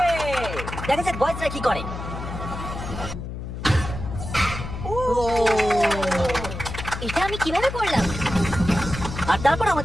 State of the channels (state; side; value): noise; left; hum, 8 dB below the sound